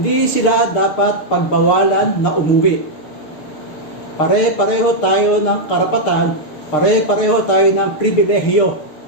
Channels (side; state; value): right; late; 6.6 ms